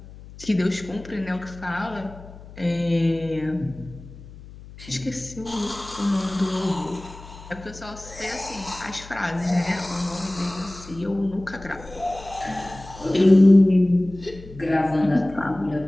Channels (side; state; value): left; noise; hum, 17 dB below the sound